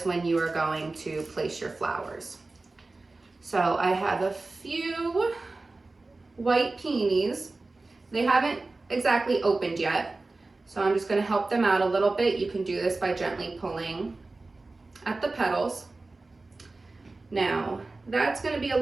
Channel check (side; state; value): left; quieter; 3.4 dB